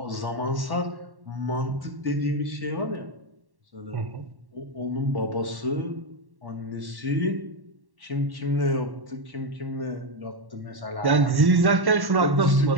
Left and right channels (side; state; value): left; late; 1.1 ms